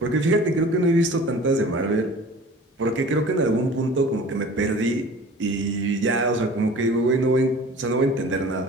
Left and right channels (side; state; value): both; normal; correlation 0.43